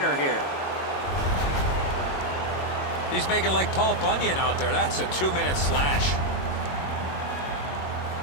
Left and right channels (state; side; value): late; right; 22 ms